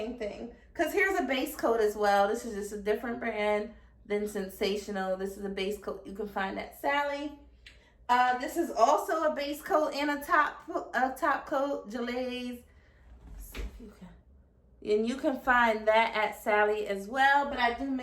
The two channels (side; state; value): both; identical; correlation 1.00